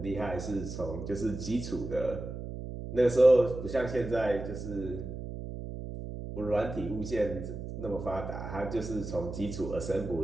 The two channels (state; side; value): noise; right; hum, 8 dB below the sound